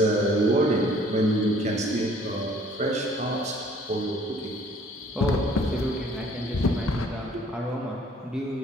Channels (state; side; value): normal; both; correlation 0.57